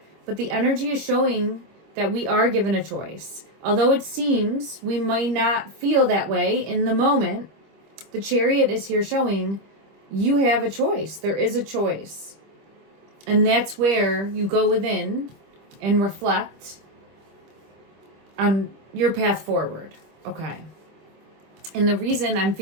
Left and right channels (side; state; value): left; late; 25 ms